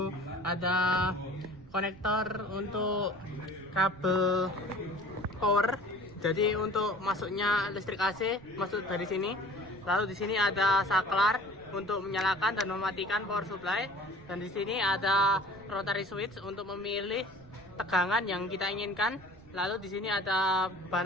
ada konektor untuk kabel power. Jadi untuk masuknya listrik AC masuk dari sini. Lalu di sini ada saklar untuk menyalakan dan mematikan power supply. Dan di sini ada rotary switch untuk memilih tegangan yang kita inginkan. Lalu di sini ada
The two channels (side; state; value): right; noise; rumble, 22 dB below the sound